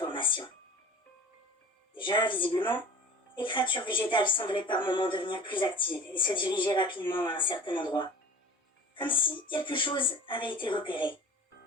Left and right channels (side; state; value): both; normal; correlation 0.41